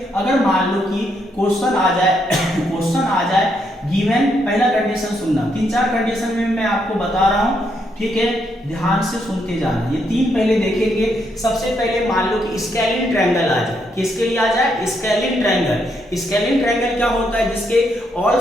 अगर मान लो कि क्वेश्चन आ जाए गिवन, पहला कंडीशन सुनना, 3-4 कंडीशन में मैं आपको बता रहा हूं, ठीक है, ध्यान से सुनते जाना। ये तीन पहले देखेंगे। सबसे पहले मान लो कि स्केलिन ट्रायंगल आ जाए, किसके लिए आ जाए, स्केलिन ट्रायंगल। स्केलिन ट्रायंगल क्या होता है, जिसके ऑल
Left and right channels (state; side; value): normal; both; correlation 0.76